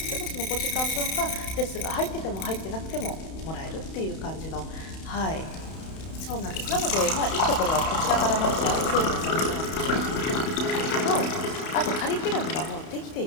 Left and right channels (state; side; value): late; right; 31 ms